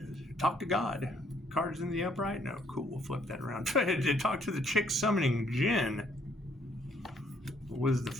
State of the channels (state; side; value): normal; both; correlation 0.67